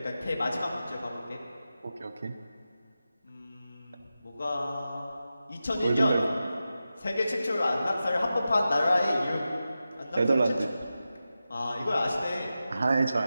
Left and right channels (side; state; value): both; inverted; correlation -0.92